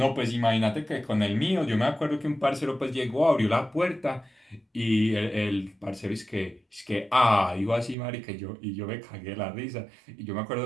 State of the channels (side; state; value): left; drops out; at 8.0 s